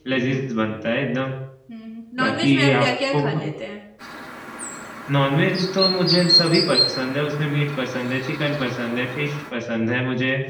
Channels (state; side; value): identical; both; correlation 1.00